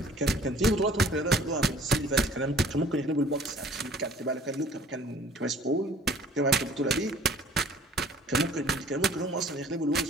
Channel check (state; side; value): normal; both; correlation 0.53